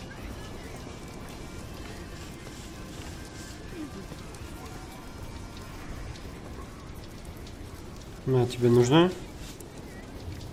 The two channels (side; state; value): both; identical; correlation 1.00